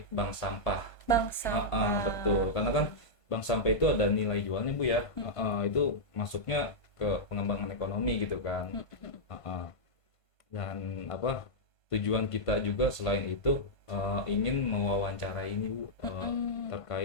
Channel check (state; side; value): late; right; 1.5 ms